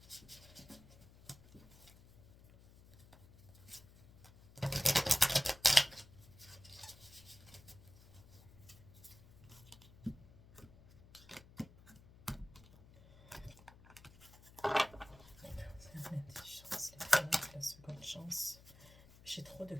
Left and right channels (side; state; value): left; noise; hum, 22 dB below the sound